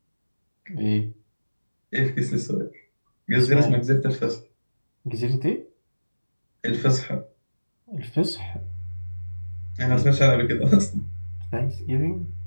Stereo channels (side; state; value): both; inverted; correlation -1.00